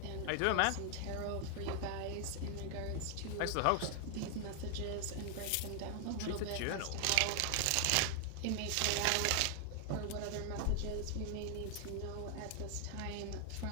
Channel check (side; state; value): both; different; correlation 0.00